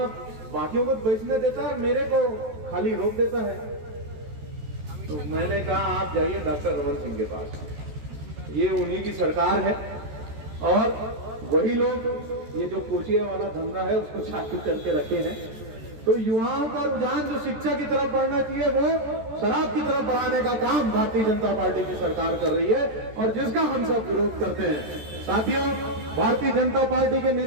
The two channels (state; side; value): late; left; 13 ms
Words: बाकियों को बेचने देता है, मेरे को खाली रोक देता है। तो मैंने कहा आप जाइए डॉक्टर रमन सिंह के पास, ये उन्हीं की सरकार है और वही लोग ये जो कोचिया वाला धंधा है उसको चालू करके रखे हैं। तो युवाओं का रुझान जो शिक्षा की तरफ बढ़ना चाहिए वो शराब की तरफ बढ़ाने का काम भारतीय जनता पार्टी की सरकार कर रही है, और जिसका हम सब विरोध करते हैं। साथियों, भारतीय जनता पार्टी के